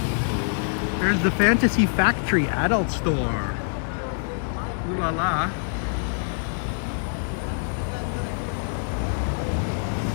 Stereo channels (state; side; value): silent; right; 62 dB below the other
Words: There's the Fantasy Factory adult store. Ooh la la.